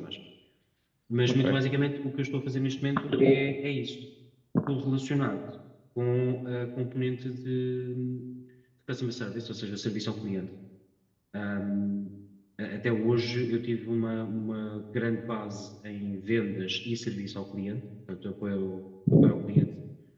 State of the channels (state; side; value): identical; both; correlation 1.00